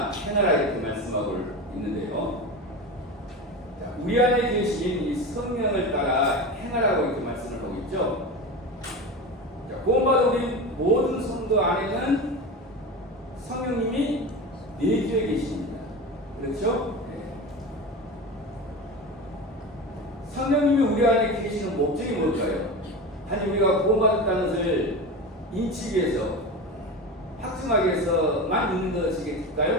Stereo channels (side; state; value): both; normal; correlation 0.26